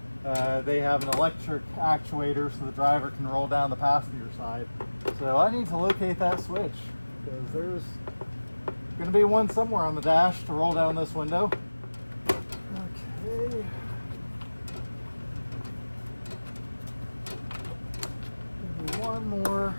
they have an electric actuator so the driver can roll down the passenger side. So I need to locate that switch, because there's going to be one somewhere on the dash to roll down this window. Okay. Maybe one more.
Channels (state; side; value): inverted; both; correlation -1.00